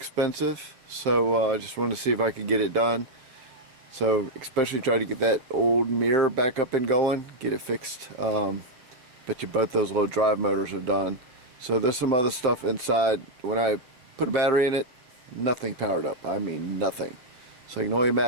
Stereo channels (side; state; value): left; late; 7.7 ms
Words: so I just wanted to see if I could get it done. So especially try to get that old mirror back up and going, get it fixed. Bet you both those little drive motors are done. So there's some other stuff inside. When I put a battery in it, nothing powered up. I mean nothing. So you can only